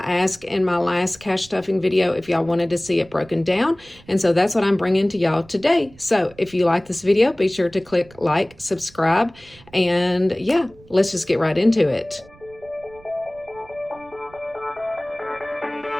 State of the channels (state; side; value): noise; right; rumble, 25 dB below the sound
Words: in my last cash stuffing video if y'all wanted to see it broken down, and so that's what I'm bringing to y'all today. So if you like this video, be sure to click like, subscribe, and yeah, let's just get right into it.